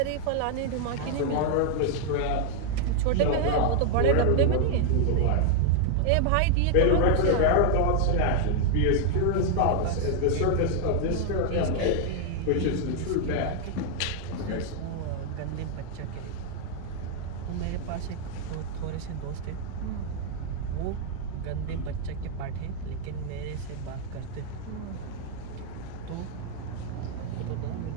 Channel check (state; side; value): different; both; correlation 0.00